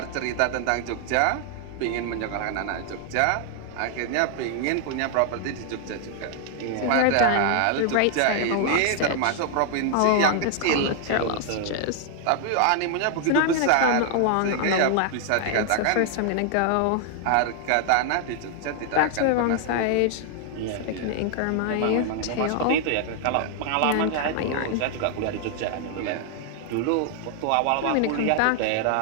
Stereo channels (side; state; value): both; different; correlation 0.00